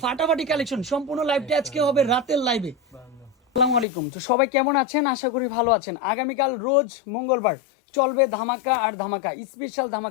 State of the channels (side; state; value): right; drops out; at 3.9 s